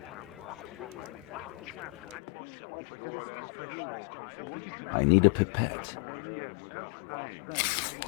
I need a pipette.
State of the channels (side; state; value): right; drops out; at 2.1 s